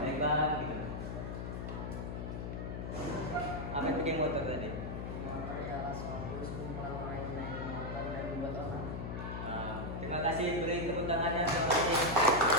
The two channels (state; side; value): noise; left; hum, 5 dB below the sound